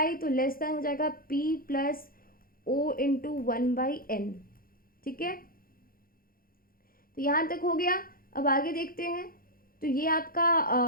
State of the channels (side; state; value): right; late; 0.42 ms